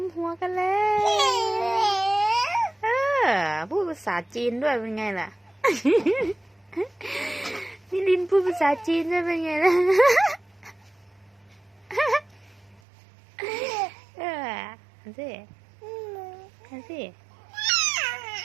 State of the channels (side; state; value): left; drops out; at 12.8 s